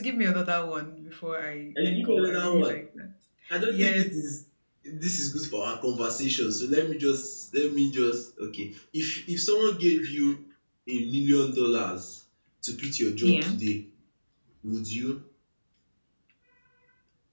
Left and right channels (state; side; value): inverted; both; correlation -1.00